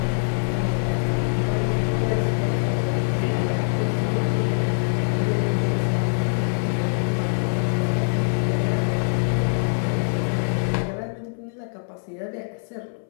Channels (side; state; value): right; silent; 63 dB below the other